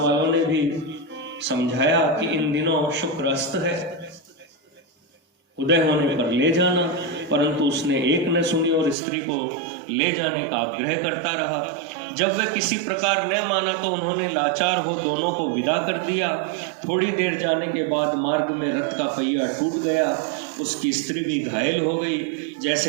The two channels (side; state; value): left; drops out; at 9.0 s